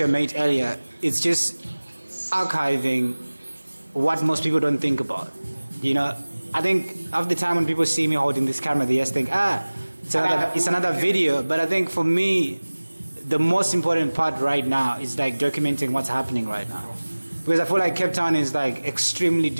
a mate earlier, it's just archiving what most people don't think about. You know, I think half the time when people see me holding this camera, they just think, it's another video. But I think for me, the most important part right now is like documenting what's happening right now. Because I feel like Capetown is like extremely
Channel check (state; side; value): inverted; both; correlation -1.00